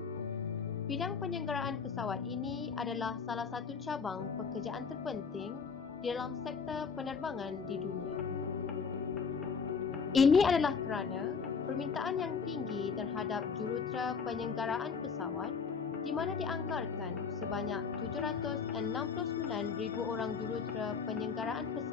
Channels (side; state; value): right; quieter; 5.7 dB